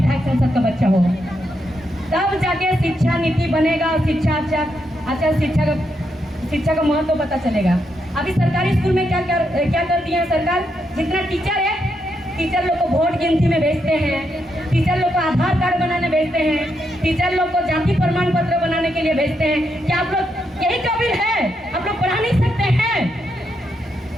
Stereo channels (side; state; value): both; normal; correlation 0.81